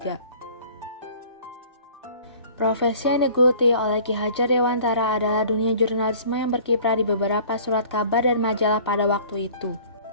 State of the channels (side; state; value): both; inverted; correlation -0.49